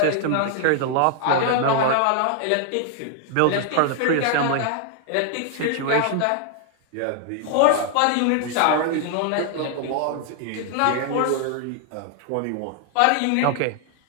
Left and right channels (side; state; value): both; different; correlation 0.00